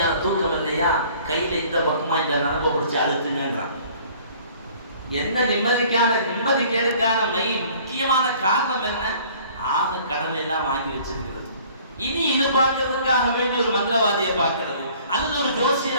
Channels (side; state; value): both; inverted; correlation -0.53